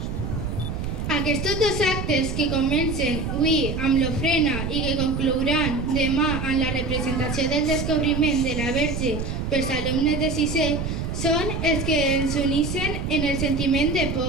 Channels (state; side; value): noise; right; rumble, 4 dB below the sound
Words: Aquests dos actes que comencen avui amb l'ofrena i que conclouran demà amb la representació del descobriment de la Verge pels alumnes de sisè són els que ens uneixen en el sentiment de